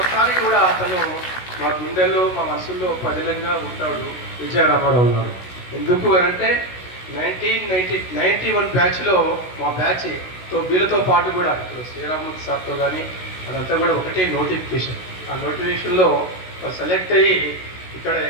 కూడా అతను మా గుండెల్లో మా మనసుల్లో పదిలంగా ఉంటాడు విజయ రామారావు గారు. ఎందుకు అనంటే 1991 బ్యాచ్లో మా బ్యాచ్తో వీళ్ళతో పాటు కూడా ఇప్పుడు శ్రీరామూర్తి సార్తో కానీ అదంతా కూడా ఒకటే నోటిఫికేషన్. ఆ నోటిఫికేషన్లో సెలెక్ట్ అయ్యి ఇక్కడ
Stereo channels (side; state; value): right; late; 16 ms